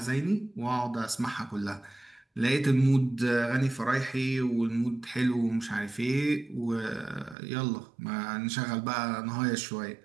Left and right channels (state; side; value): drops out; left; at 7.4 s